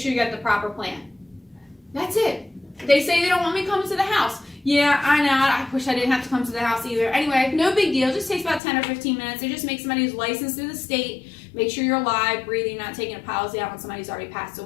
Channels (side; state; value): right; drops out; at 8.6 s